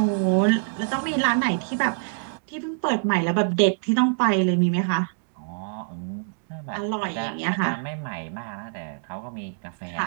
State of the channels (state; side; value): silent; left; digital silence